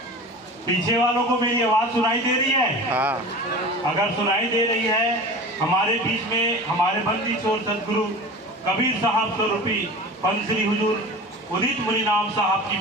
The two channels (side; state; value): both; normal; correlation 0.35